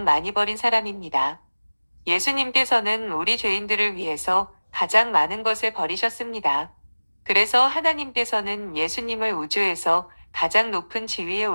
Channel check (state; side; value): inverted; both; correlation -1.00